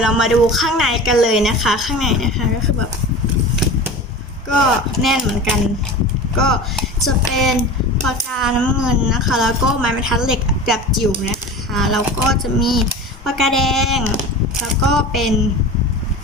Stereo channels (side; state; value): both; normal; correlation 0.34